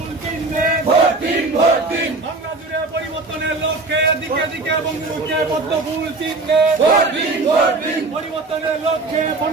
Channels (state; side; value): quieter; left; 3.4 dB